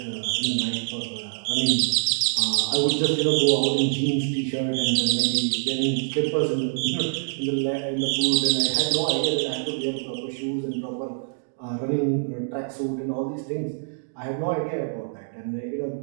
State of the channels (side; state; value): left; silent; digital silence